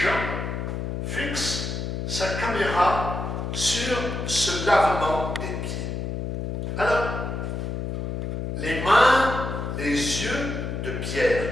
fixe sa caméra sur ce lavement des pieds. Alors, les mains, les yeux de Pierre.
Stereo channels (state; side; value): noise; left; hum, 4 dB below the sound